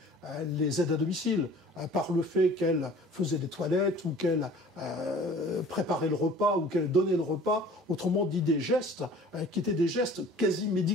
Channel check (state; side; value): normal; both; correlation 0.47